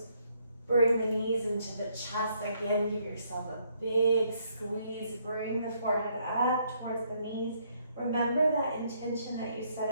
Bring the knees into the chest. Again, give yourself a big squeeze. Bring the forehead up towards the knees. Remember that intention that you set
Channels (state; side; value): inverted; both; correlation -0.70